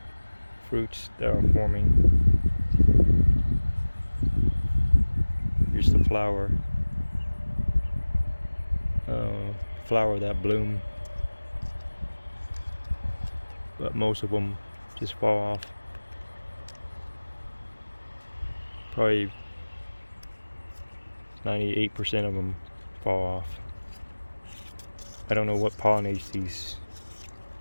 fruits that are forming. Here's the flower that bloom, but most of them just fall off. Probably 98% of them fall off. I don't know what pollinates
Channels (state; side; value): inverted; both; correlation -1.00